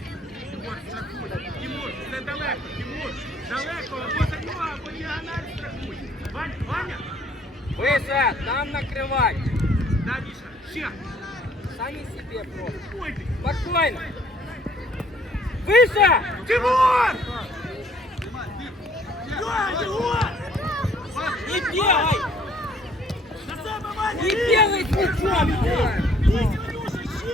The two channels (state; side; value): normal; both; correlation 0.60